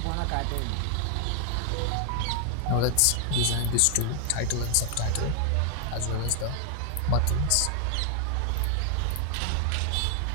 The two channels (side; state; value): both; different; correlation 0.00